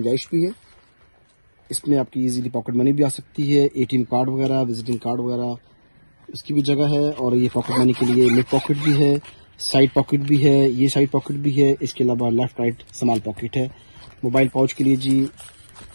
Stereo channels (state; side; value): inverted; both; correlation -1.00